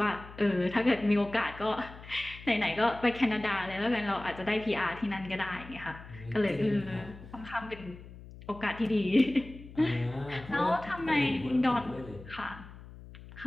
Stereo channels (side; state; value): left; noise; hum, 16 dB below the sound